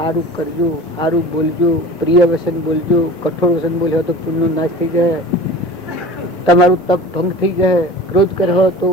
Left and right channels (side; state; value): both; normal; correlation 0.38